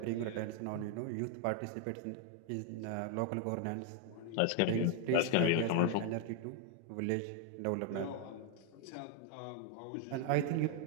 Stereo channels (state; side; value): different; both; correlation 0.00